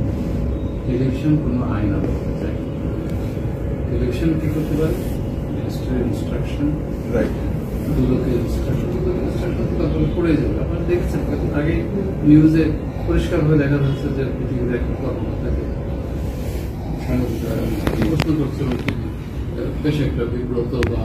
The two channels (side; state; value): both; identical; correlation 1.00